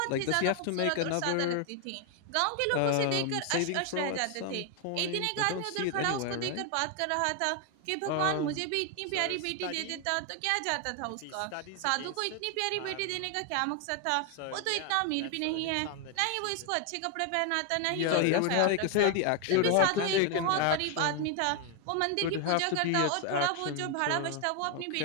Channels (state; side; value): different; both; correlation 0.01